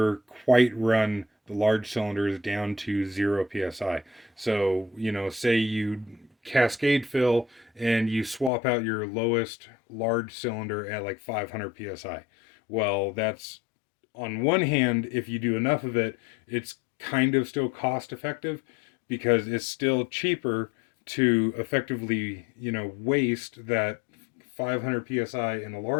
quite run the large cylinders down to 0 psi. So, say you cascade fill and you swap out your lowest large cylinder at like 500 psi. Well, that's on one hand, if you do enough of it, it's kind of still cost effective because it's still cheaper to effectively, waste that 500 psi in a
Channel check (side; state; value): right; drops out; at 8.5 s